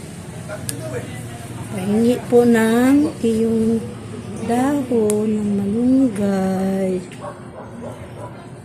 Pahingi po ng iyong dahon ng malunggay.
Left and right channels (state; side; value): identical; both; correlation 1.00